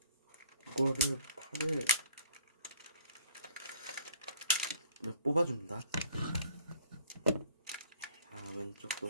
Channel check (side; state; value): both; inverted; correlation -0.56